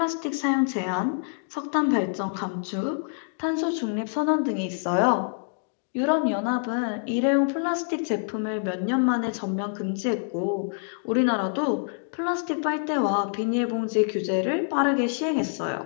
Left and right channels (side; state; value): right; silent; digital silence